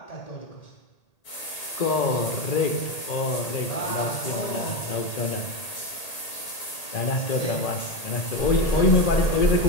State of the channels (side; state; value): right; late; 1.8 ms